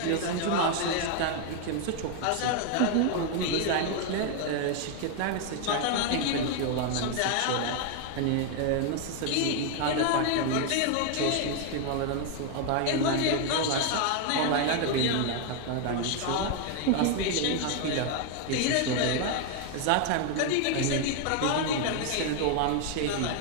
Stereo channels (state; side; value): different; both; correlation 0.01